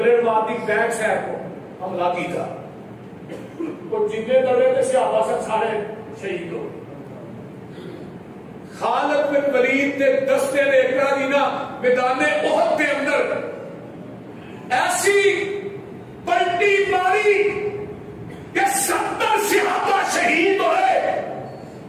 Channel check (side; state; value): both; identical; correlation 1.00